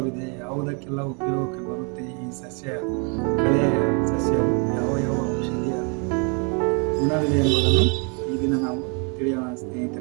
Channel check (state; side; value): quieter; left; 36.1 dB